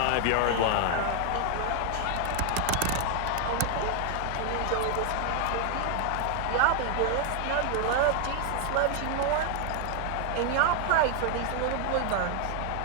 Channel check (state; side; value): different; both; correlation 0.00